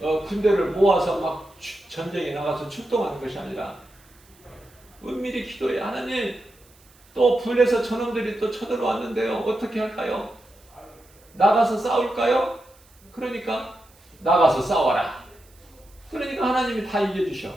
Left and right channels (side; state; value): right; noise; hiss, 29 dB below the sound